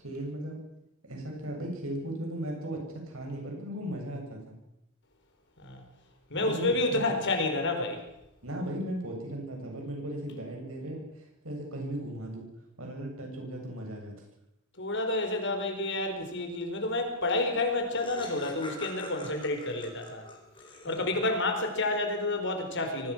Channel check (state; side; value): normal; both; correlation -0.08